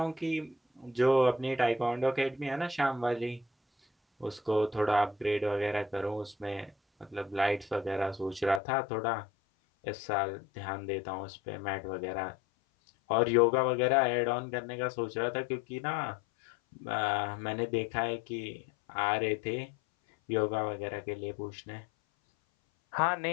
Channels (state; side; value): drops out; right; at 8.6 s